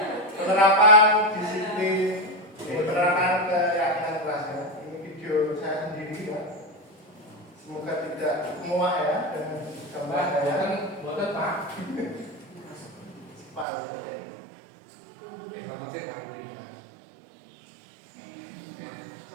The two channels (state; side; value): drops out; left; at 13.7 s